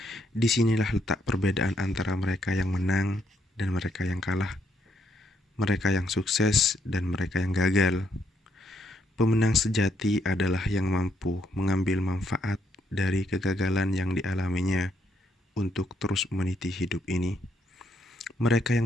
Disinilah letak perbedaan antara mereka yang menang dan mereka yang kalah, mereka yang sukses dan mereka yang gagal. Pemenang sejati adalah yang mampu mengambil manfaat dari kegagalan yang dialaminya untuk terus meniti hidup ini. Mereka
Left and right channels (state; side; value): normal; both; correlation 0.74